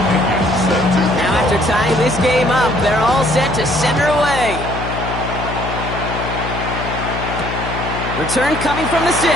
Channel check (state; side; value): noise; left; hum, 6 dB below the sound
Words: Now after tying this game up, they're all set to send her away. Return coming from the 6.